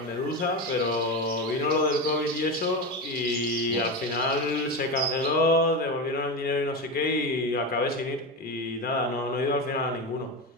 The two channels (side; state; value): both; normal; correlation 0.19